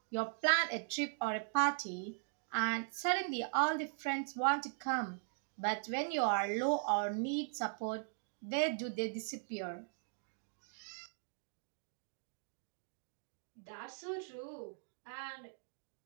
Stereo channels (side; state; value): left; silent; digital silence